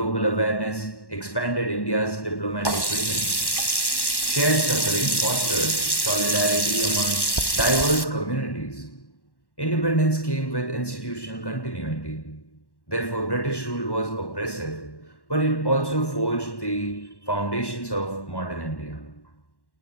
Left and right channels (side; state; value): right; late; 1.1 ms